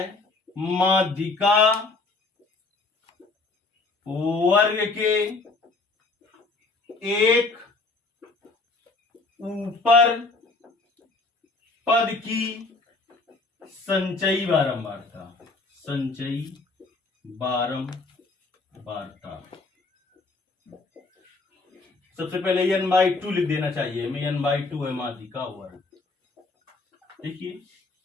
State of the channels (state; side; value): quieter; right; 3.6 dB